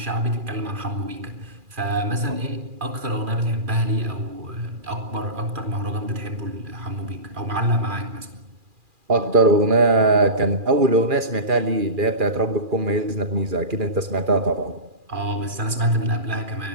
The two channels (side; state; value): left; late; 2.4 ms